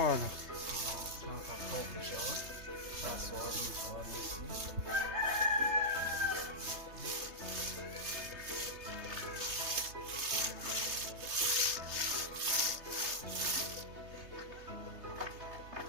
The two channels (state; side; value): late; left; 3.3 ms